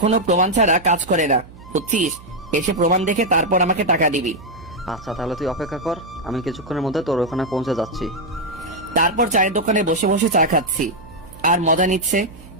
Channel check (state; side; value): noise; right; hum, 20 dB below the sound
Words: প্রমাণ ছাড়া কাজ করে না, বুঝছিস? এসে প্রমাণ দেখে তারপর আমাকে টাকা দিবি। আচ্ছা তাহলে তুই অপেক্ষা কর, আমি কিছুক্ষণের মধ্যে তোর ওখানে পৌঁছে যাচ্ছি। তারপর চায়ের দোকানে বসে বসে চা খাচ্ছি আর মজা নিচ্ছে।